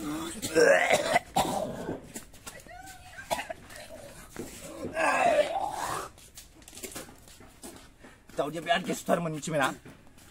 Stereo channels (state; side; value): identical; both; correlation 1.00